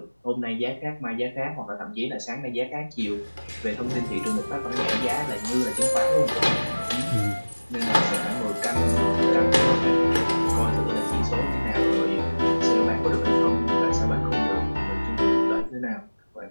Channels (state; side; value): inverted; both; correlation -1.00